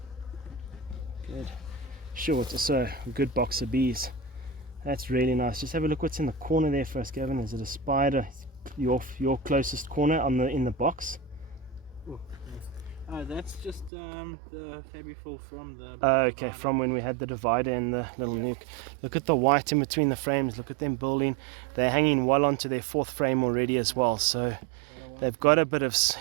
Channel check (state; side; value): drops out; left; at 13.9 s